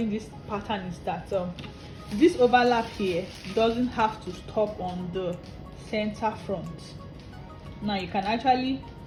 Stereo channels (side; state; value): both; identical; correlation 1.00